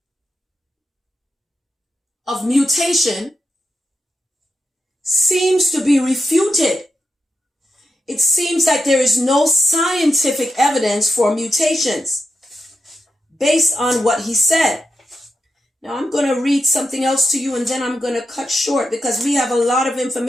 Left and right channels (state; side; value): normal; both; correlation 0.87